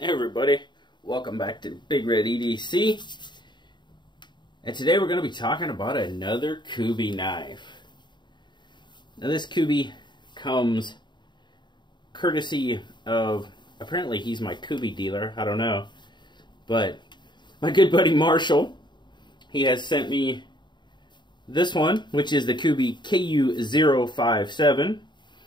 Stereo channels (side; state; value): right; late; 0.22 ms